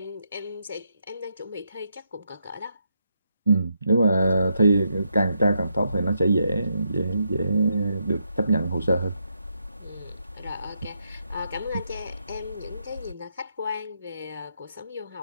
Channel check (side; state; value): both; inverted; correlation -0.80